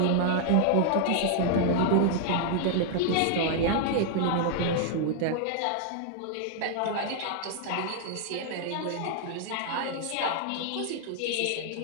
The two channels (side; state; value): both; different; correlation 0.00